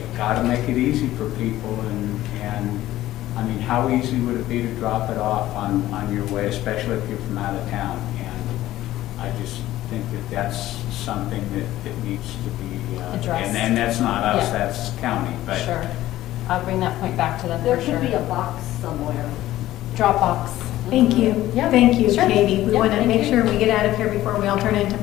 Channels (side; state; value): right; quieter; 14.9 dB